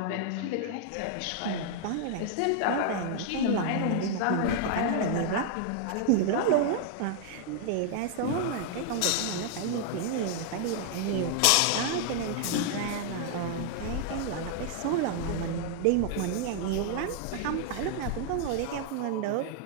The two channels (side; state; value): both; different; correlation 0.00